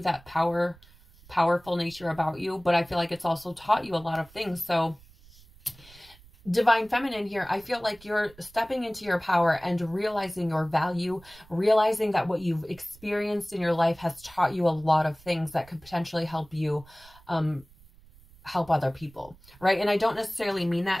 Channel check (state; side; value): noise; right; rumble, 25 dB below the sound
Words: that powerful nature about you. But I feel like it's also taught you a lot of things. So Divine Feminine here, I feel like you're stepping into your power and realizing your value, realizing that what you've experienced in your life has taught you a lot of things that could potentially help you help other people, right? And I don't necessarily mean